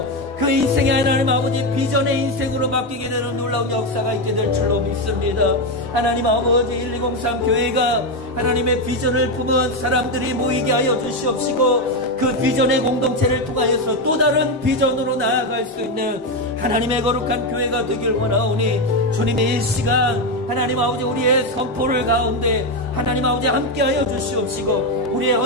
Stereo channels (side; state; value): both; normal; correlation 0.09